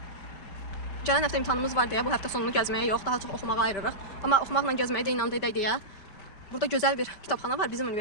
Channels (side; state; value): right; late; 5.1 ms